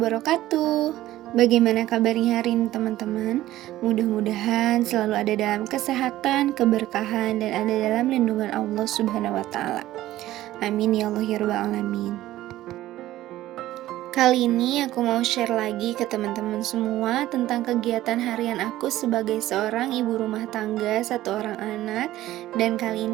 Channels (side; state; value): left; quieter; 15.0 dB